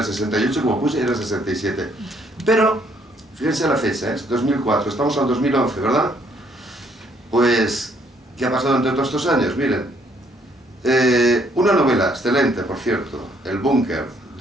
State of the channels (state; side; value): normal; both; correlation 0.67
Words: 68 como puse, era el 67. Pero, fíjense la fecha, es 2004, estamos al 2011, ¿verdad? Pues, ¿qué ha pasado entre todos estos años? Miren, una novela excelente, por cierto, El Búnker,